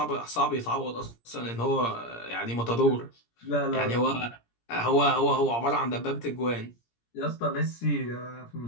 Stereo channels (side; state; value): right; late; 17 ms